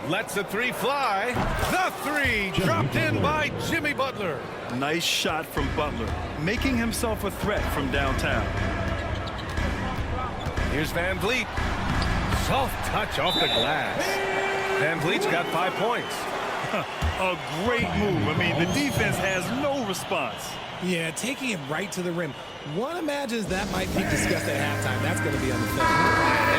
Lets the 3 fly. The 3 dropped in by Jimmy Butler. Nice shot from Butler, making himself a threat from downtown. Here's Van Vliet. Soft touch off the glass. Van Vliet's got 5 points. A great move. I mean, the defense has no response. Yeah, taking it right to the rim. One imagines that might be discussed at halftime. That's going to be on the film.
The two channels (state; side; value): identical; both; correlation 1.00